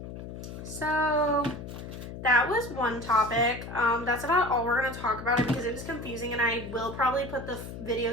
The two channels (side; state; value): left; noise; hum, 10 dB below the sound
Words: So, that was one topic. That's about all we're going to talk about it, because it was confusing, and I will probably put the